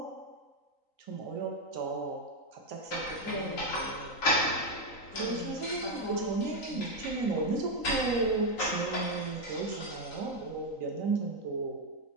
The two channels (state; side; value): late; right; 3.9 ms